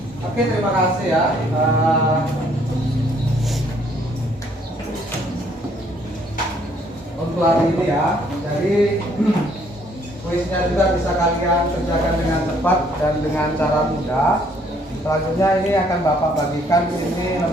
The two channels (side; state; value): both; normal; correlation 0.65